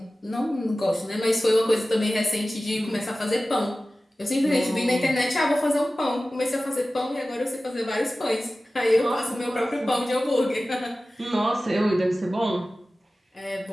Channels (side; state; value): both; normal; correlation 0.96